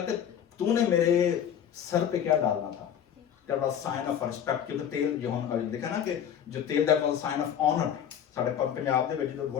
तूने मेरे सर पे क्या डालना था, that was sign of respect, क्योंकि तेल जो हम देखा ना कि जो तेल that was sign of honour. साडे पंजाब दे विच जो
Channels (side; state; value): right; quieter; 9.1 dB